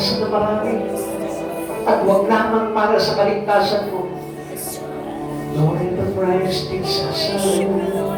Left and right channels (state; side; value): identical; both; correlation 1.00